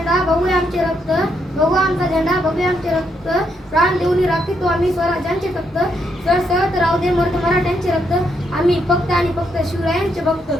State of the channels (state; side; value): normal; both; correlation 0.77